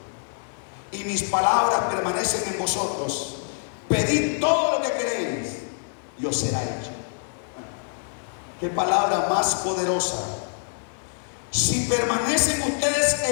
y mis palabras permanecen en vosotros, pedid todo lo que queréis y os será hecho. Qué palabra más poderosa. Si permanecen ustedes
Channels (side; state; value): right; silent; digital silence